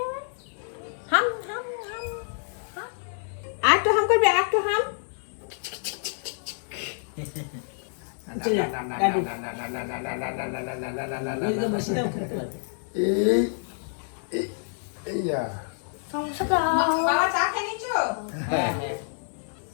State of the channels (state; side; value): silent; right; digital silence